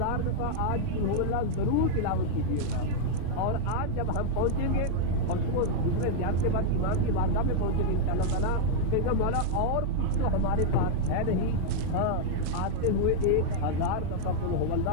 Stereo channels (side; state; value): both; different; correlation -0.01